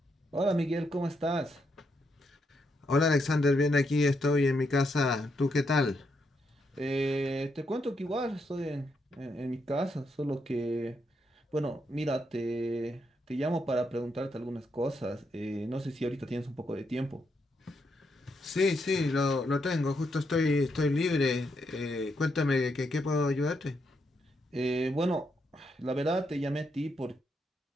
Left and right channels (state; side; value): normal; both; correlation 0.79